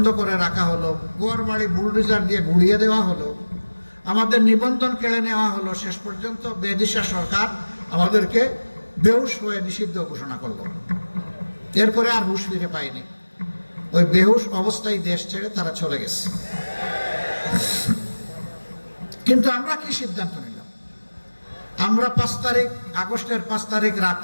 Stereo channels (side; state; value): both; inverted; correlation -1.00